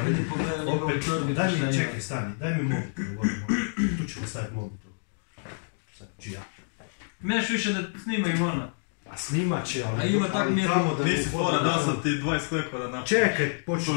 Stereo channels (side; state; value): right; silent; digital silence